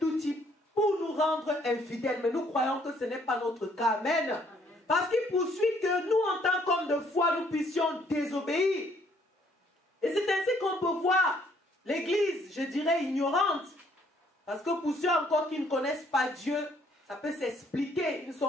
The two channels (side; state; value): both; normal; correlation 0.65